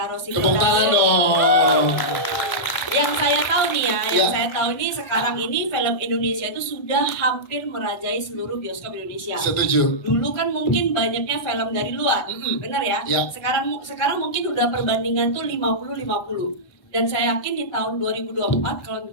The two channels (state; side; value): late; right; 1.6 ms